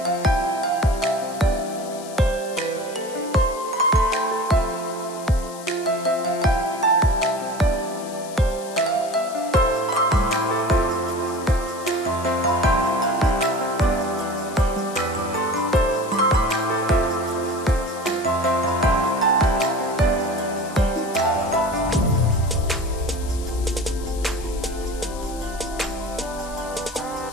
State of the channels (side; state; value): left; noise; hiss, 16 dB below the sound